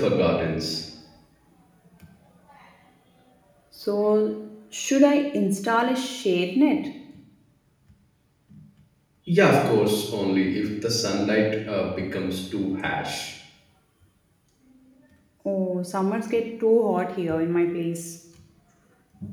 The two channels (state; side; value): identical; both; correlation 1.00